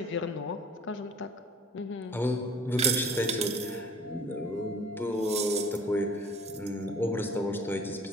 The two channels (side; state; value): both; normal; correlation 0.50